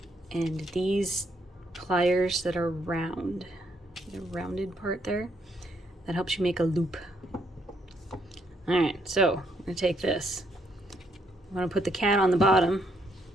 And these pliers that are round, the rounded part there, that helps you make a loop. All right, so I'm going to take this. I'm going to put the cat on the bottom.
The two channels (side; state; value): both; normal; correlation 0.73